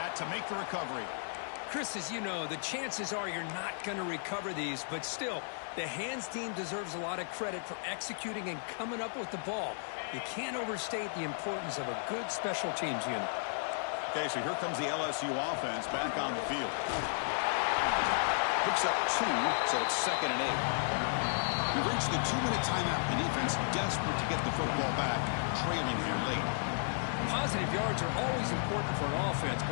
to make the recovery. Chris, as you know, the chances are you're not going to recover these, but still, the hands team deserves a lot of credit for executing and coming up with the ball. You can't overstate the importance of a good special teams unit. Okay, so here comes the LSU offense back on the field. Picks up 2, so it's second and 8. We've reached the 2-minute timeout. The defense desperate to get the football back, trailing here late. Positive yards are always important for an offense,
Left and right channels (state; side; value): silent; right; 55 dB below the other